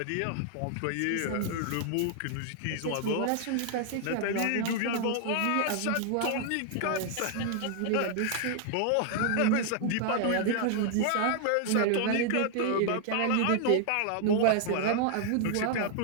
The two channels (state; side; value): different; both; correlation 0.00